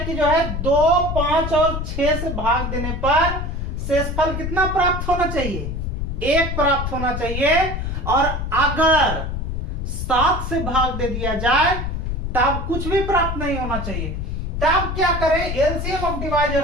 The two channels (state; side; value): noise; left; rumble, 3 dB below the sound